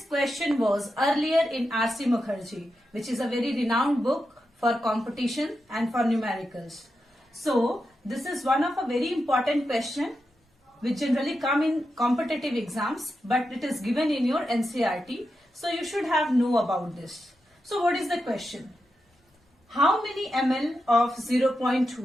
question was earlier in R.C. Mukherjee, which is a very renowned book for competition and for numericals. So this is one of a very important question which generally come in competitive exams, but it is given in your NCERT, so you should have know about this. So what is the question? How many ml of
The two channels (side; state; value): both; normal; correlation 0.88